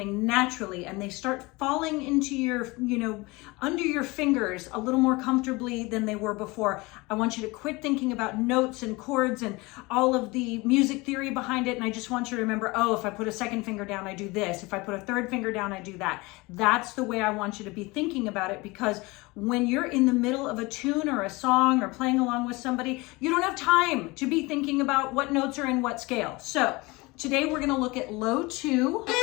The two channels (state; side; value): quieter; right; 23.8 dB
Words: naturally and they start falling into your, under your fingers a little more comfortably than they were before. I want you to quit thinking about notes and chords and all of the music theory behind it. And I just want you to remember, oh, if I put a second finger down, I do this. If I put a third finger down, I do that. That's the way I want you to be thinking about it, because when you're in the middle of a tune or a song or playing along with somebody, you don't have time to be thinking about what notes are in what scale. So today we're going to look at low 2.